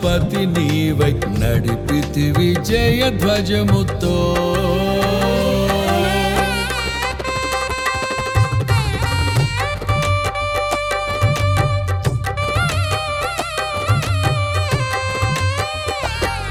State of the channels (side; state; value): both; identical; correlation 1.00